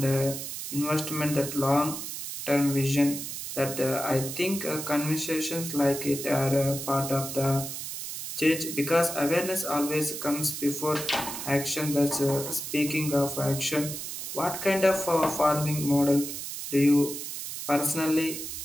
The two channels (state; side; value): noise; right; hiss, 7 dB below the sound